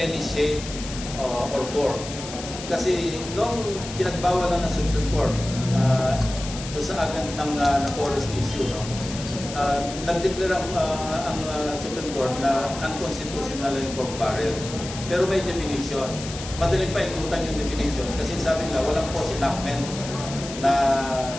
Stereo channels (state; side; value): noise; left; hiss, 11 dB below the sound